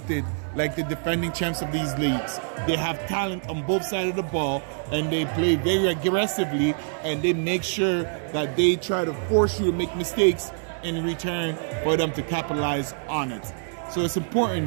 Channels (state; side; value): silent; left; digital silence